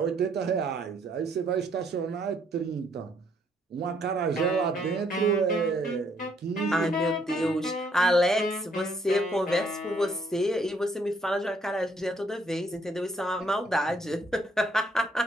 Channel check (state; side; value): normal; both; correlation 0.68